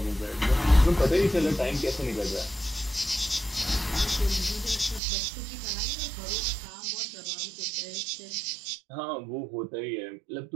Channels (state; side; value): drops out; left; at 5.0 s